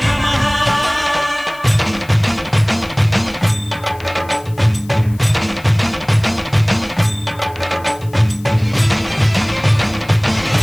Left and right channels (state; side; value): noise; left; hiss, 24 dB below the sound